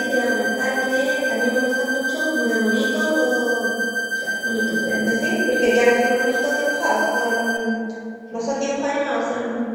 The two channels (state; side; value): identical; both; correlation 1.00